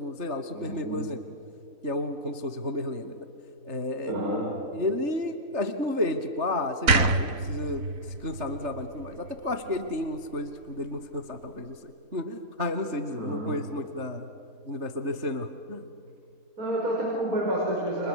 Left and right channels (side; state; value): left; late; 4.0 ms